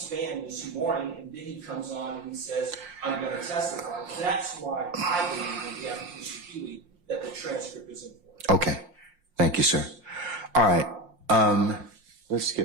this morning, and then he comes on and he says, I'm going to testify. That's why I believe in the application Huey that the transcript is important. Okay. Thank you, sir. All right. Let's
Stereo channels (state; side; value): late; left; 5.6 ms